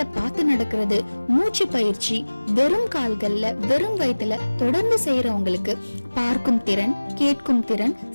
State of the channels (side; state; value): both; inverted; correlation -1.00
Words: பார்த்து நடக்கிறது, மூச்சு பயிற்சி வெறும் கால்கள்ல வெறும் வயிற்றுல தொடர்ந்து செய்யறவங்களுக்கு பார்க்கும் திறன், கேட்கும் திறன்,